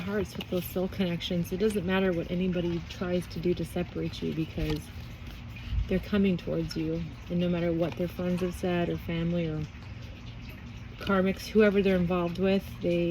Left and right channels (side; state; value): both; identical; correlation 1.00